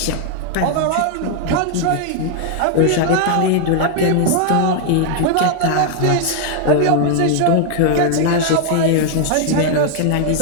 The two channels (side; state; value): both; different; correlation 0.00